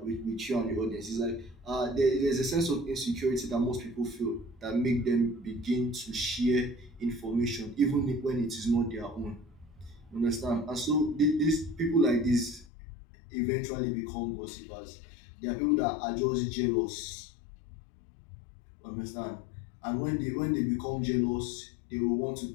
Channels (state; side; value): drops out; right; at 12.7 s